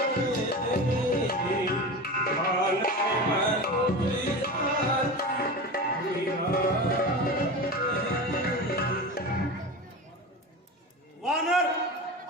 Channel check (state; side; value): normal; both; correlation 0.28